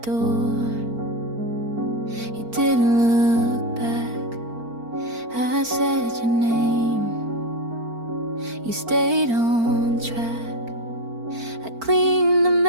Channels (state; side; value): late; left; 4.4 ms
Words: You didn't look back. I said your name. You stayed on track. I cleaned the